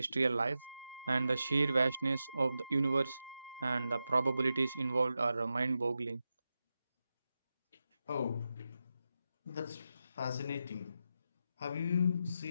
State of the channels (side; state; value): both; inverted; correlation -0.89